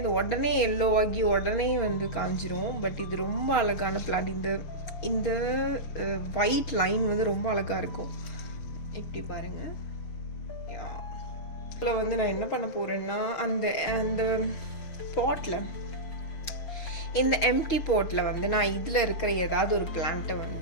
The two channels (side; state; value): right; late; 6.8 ms